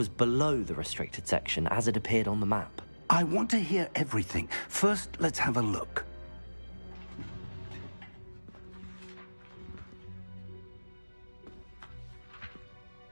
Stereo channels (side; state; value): both; inverted; correlation -1.00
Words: below the restricted section as it appeared on the map. I want to hear everything. First, let's have a look.